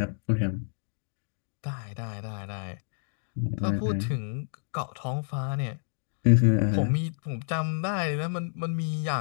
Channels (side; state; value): right; silent; digital silence